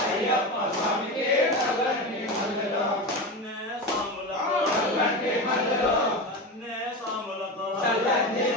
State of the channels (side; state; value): both; normal; correlation 0.22